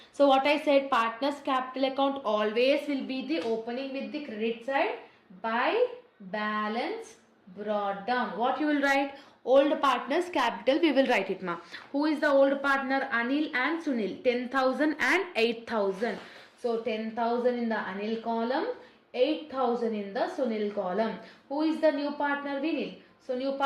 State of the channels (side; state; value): both; identical; correlation 1.00